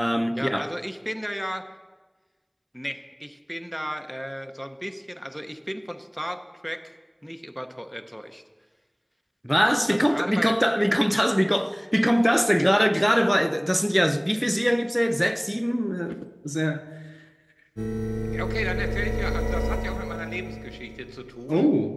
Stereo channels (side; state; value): both; identical; correlation 1.00